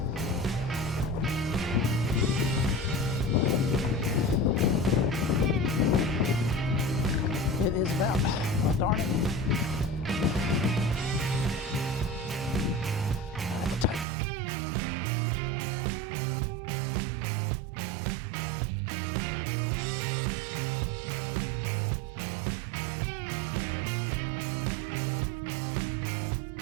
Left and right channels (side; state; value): left; drops out; at 14.1 s